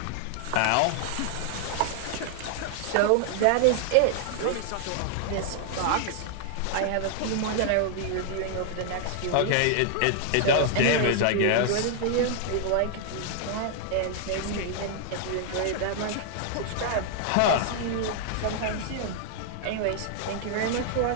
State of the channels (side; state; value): both; different; correlation 0.00